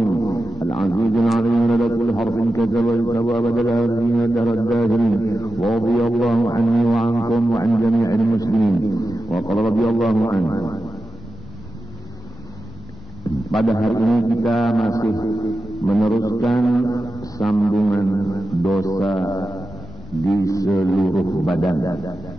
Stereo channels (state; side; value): normal; both; correlation 0.92